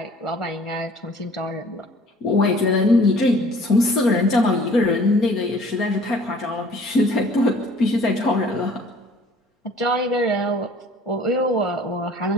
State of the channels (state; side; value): normal; both; correlation 0.52